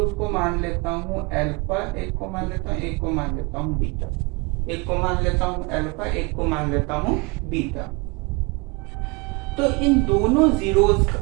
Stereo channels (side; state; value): left; quieter; 28.1 dB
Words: को मान लेता हूँ अल्फा, एक को मान लेता हूँ, एक को मान लेता हूँ बीटा, एक को मान लेता हूँ अल्फा, एक को मान लेता हूँ बीटा। तो इन दोनों जीरोस